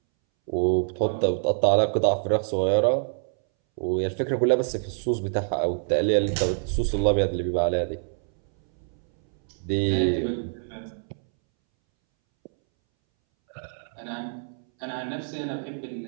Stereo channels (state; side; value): silent; left; 61 dB below the other